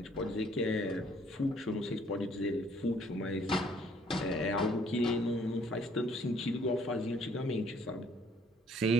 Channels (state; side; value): normal; both; correlation 0.62